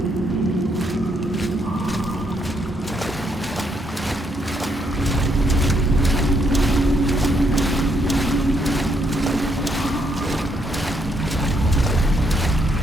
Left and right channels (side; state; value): both; normal; correlation 0.74